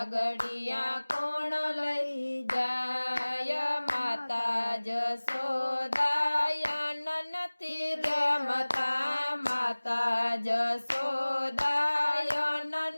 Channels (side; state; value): both; inverted; correlation -1.00